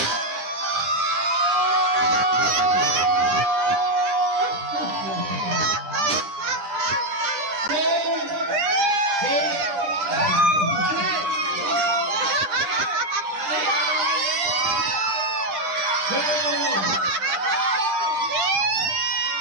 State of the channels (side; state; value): left; late; 10 ms